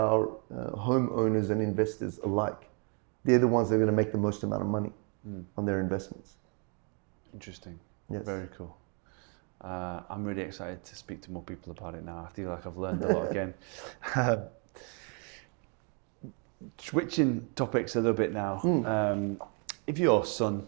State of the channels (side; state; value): left; quieter; 37.2 dB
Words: homeowners and investors alike. They're the ones that are going to make the most amount of money on their investments. Interesting. Yes. Very cool. I'm really excited to speak to more people about it now. I feel like I've learned a lot again. Switching topics a little bit now. If your son,